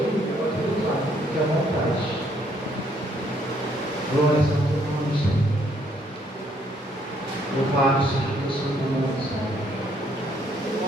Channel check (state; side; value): normal; both; correlation 0.68